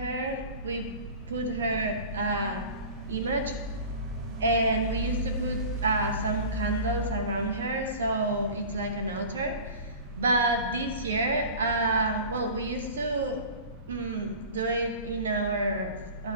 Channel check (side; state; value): both; inverted; correlation -0.38